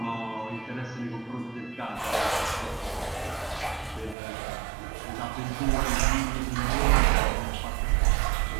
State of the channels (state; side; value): drops out; left; at 4.2 s